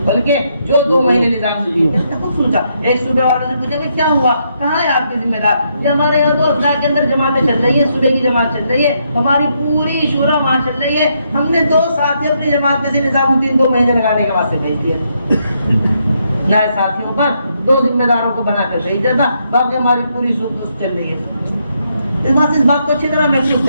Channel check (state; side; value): inverted; both; correlation -0.77